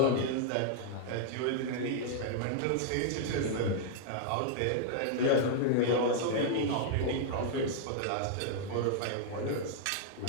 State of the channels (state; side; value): different; both; correlation -0.01